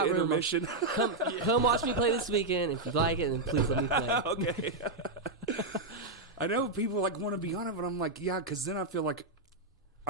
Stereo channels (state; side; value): quieter; left; 3.0 dB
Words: the room, intermission. come watch me play this weekend. If you like it, then please let me play. Okay. I know people like want to be on it, but I'm like, yeah, because then I feel like